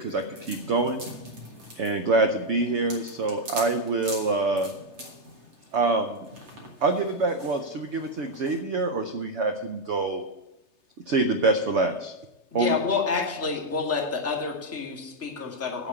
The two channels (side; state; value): left; late; 3.3 ms